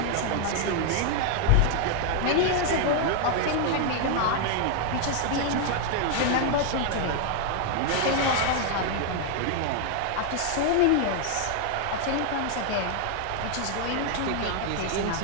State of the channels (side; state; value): both; different; correlation 0.00